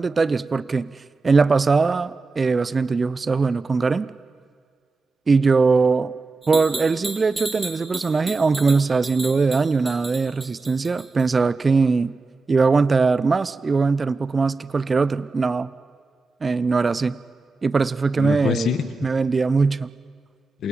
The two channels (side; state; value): left; quieter; 3.8 dB